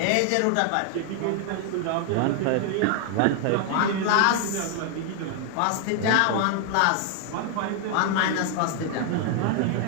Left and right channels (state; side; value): different; both; correlation 0.00